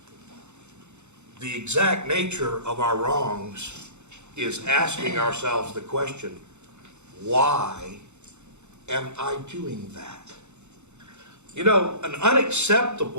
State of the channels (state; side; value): late; left; 0.83 ms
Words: The exact nature of our wrongs is asking ourselves the question, why am I doing that? You know, an